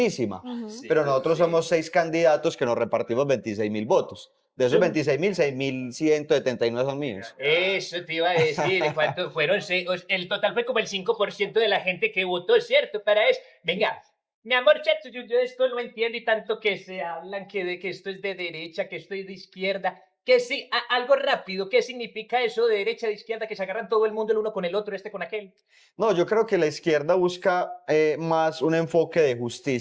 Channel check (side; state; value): both; identical; correlation 1.00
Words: Ujú. sí, pero nosotros sí. somos 6 candidatos que nos repartimos 26.000 votos. De esos 26.000, 6.179 son míos. Eso te iba a decir, ¿cuántos fueron? El total fue como el 5% de la gente que votó, ¿cierto? Para eso. Venga, mi amor, chato, yo esto no entiendo y tanto que se hablan que esto es de derecha, que esto es de izquierda. Que sí, algo rápido, ¿qué significa eso de derecha, de izquierda, que se agarran todo el mundo el uno con el otro, este con aquel? No, yo creo que la izquierda busca más un enfoque de